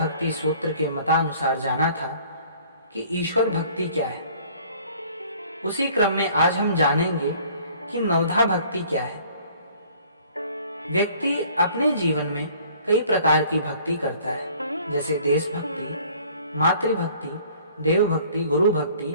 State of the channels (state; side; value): inverted; both; correlation -0.54